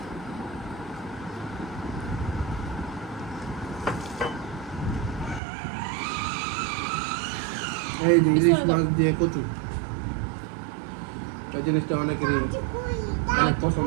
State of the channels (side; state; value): left; drops out; at 5.4 s